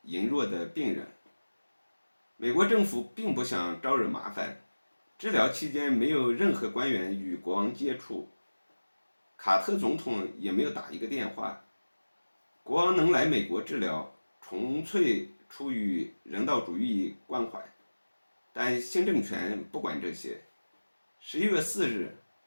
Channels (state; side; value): inverted; both; correlation -1.00